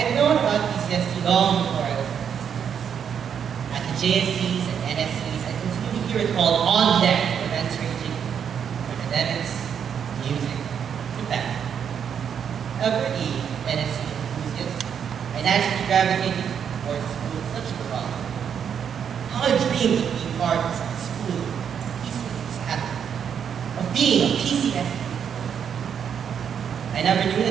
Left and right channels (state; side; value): quieter; left; 7.8 dB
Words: known about PCSD long before I was at the JSCs and NSCs. I continue to hear it called on deck for events ranging from academics, music, to fashion. However, NSC enthusiast, I naturally gravitated towards schools such as Rock. How I dreamed of being part of a school PCSD happened, of being a PCSD. I never knew